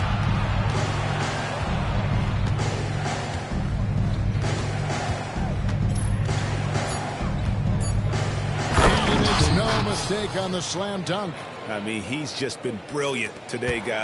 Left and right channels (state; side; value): identical; both; correlation 1.00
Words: And it's no mistake on the slam dunk. I mean, he's just been brilliant today,